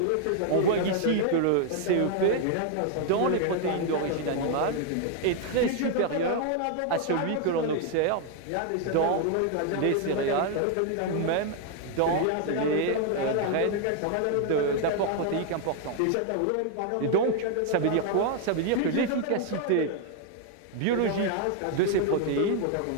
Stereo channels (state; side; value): different; both; correlation 0.00